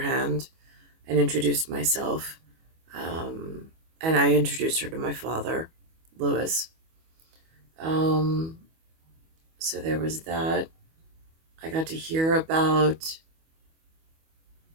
and introduce myself. Um, and I introduced her to my father, Louis. Um, so there was that. I got to hear about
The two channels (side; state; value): left; late; 25 ms